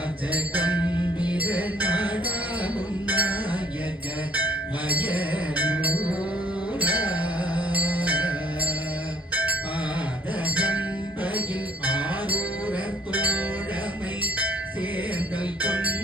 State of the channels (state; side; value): normal; both; correlation 0.60